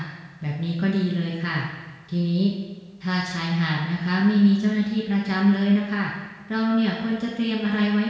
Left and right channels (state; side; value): identical; both; correlation 1.00